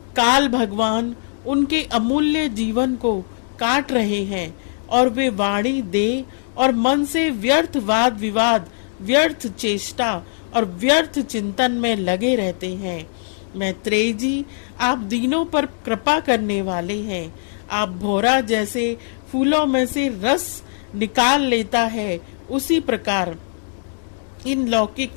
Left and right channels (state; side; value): silent; right; digital silence